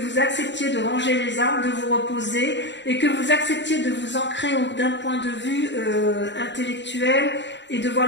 acceptiez de ranger les armes, de vous reposer, et que vous acceptiez de vous ancrer d'un point de vue intellectuel et de voir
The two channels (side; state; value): right; late; 0.52 ms